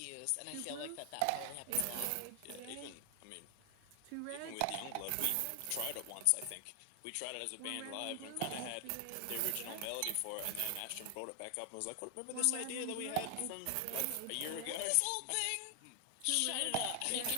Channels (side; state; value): both; different; correlation 0.00